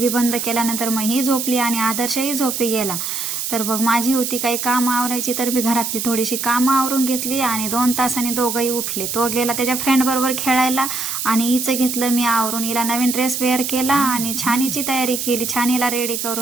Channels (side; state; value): right; noise; hiss, 3 dB below the sound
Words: बंद केल्यानंतर मग ही झोपली आणि आदर्शही झोपी गेला. तर मग माझी होती काही कामं आवरायची, तर मी घरातली थोडीशी कामं आवरून घेतली आणि 2 तासांनी दोघंही उठले. तो गेला त्याच्या फ्रेंड बरोबर खेळायला आणि हिचं घेतलं मी आवरून. हिला नवीन ड्रेस वेअर केला आणि छान हिची तयारी केली. छान हिला रेडी